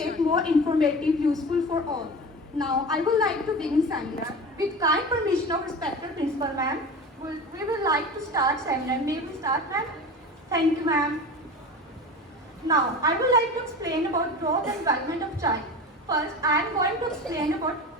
more informative, useful for all. Now, I would like to begin seminar. With kind permission of respected principal ma'am, we would like to start seminar. May we start, ma'am? Thank you, ma'am. Now, I would like to explain about growth and development of child. First, I am going to explain about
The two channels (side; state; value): both; normal; correlation 0.32